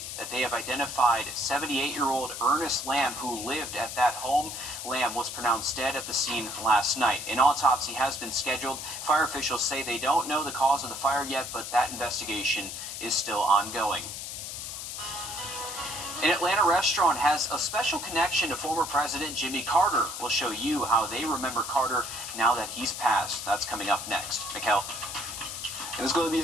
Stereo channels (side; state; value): left; noise; hiss, 7 dB below the sound